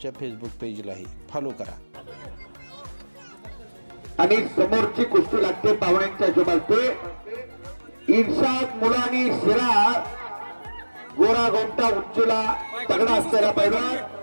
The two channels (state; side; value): inverted; both; correlation -1.00